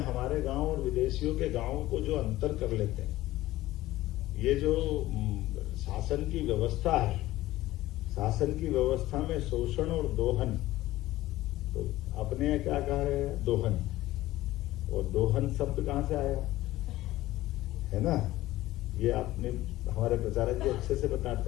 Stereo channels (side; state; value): right; quieter; 16.3 dB